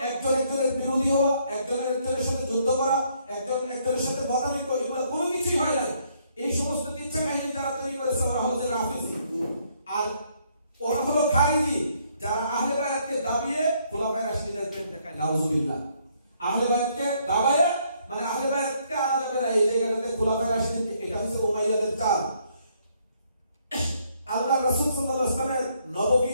একজন একজনের বিরোধী হওয়া, একজনের সাথে যুদ্ধ করা, একজনের সাথে মতামিত, এগুলো কোনো কিছুই হয় না। এই সমস্ত কিচ্ছা কাহিনী যারা তৈরি করেছে ওরা হচ্ছে রাফিজি, আর ওরা হলো খারিজি, যারা আহলে বায়াতকে দাবিয়ে খুলাফায়ে রাশিদিনের প্রেম দেখায়। নাউজুবিল্লাহ। আহলে বায়াতকে দাবায়ে মানে আহলে বায়াতকে আনা যাবে না এই জায়গাটাতে, খুলাফায়ে রাশিদিন, এটা হচ্ছে উমাইয়াদের চাল। আল্লাহ রাসূল সাল্লাল্লাহু আলাইহি ওয়াসাল্লামের নববী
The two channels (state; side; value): inverted; both; correlation -0.69